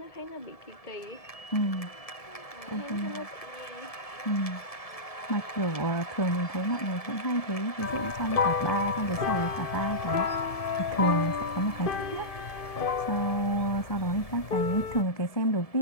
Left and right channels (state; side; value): late; right; 1.7 ms